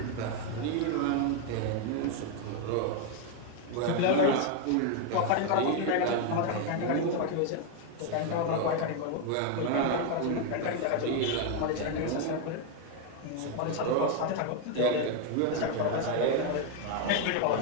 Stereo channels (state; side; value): different; both; correlation 0.01